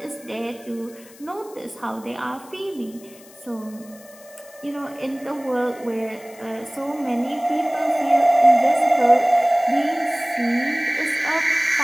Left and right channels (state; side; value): noise; left; hiss, 23 dB below the sound